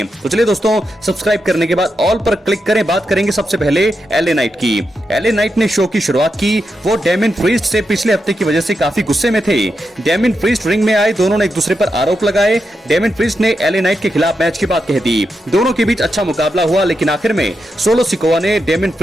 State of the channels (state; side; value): normal; both; correlation 0.86